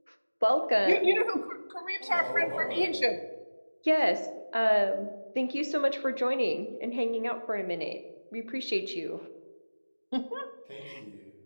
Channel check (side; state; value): both; inverted; correlation -1.00